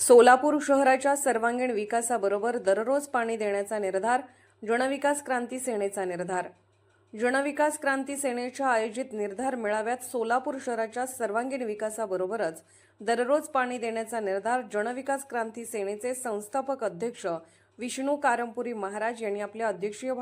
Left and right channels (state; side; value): identical; both; correlation 1.00